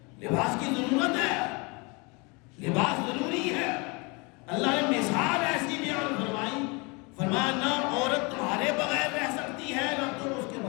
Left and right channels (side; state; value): right; quieter; 28.9 dB